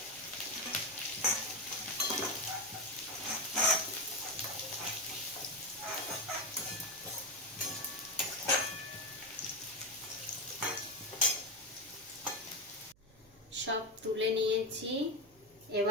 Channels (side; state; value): right; noise; hum, 28 dB below the sound